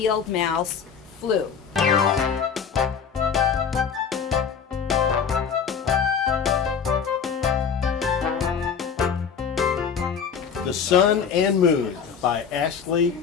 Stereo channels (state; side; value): quieter; right; 6.8 dB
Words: mouse flew. The Sun and Moon by Ashley